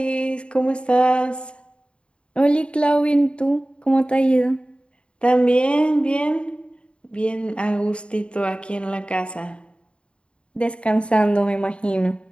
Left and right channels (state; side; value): late; right; 0.056 ms